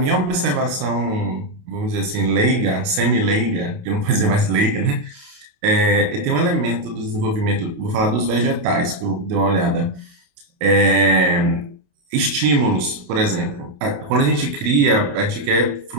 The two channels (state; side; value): late; left; 28 ms